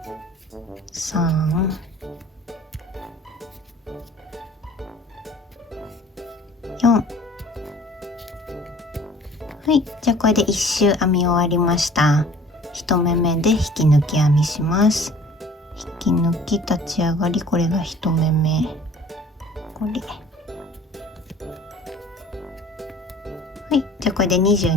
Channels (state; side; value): normal; both; correlation 0.50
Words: 3、4。はい、じゃあこれで1周編み終わりました。1目目で引き抜き編みします。引き抜き立ち上がり、これが1目目。これ。はい、じゃあこれで